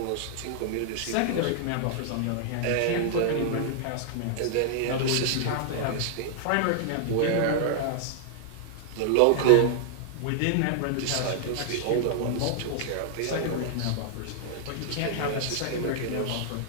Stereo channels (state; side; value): different; both; correlation -0.01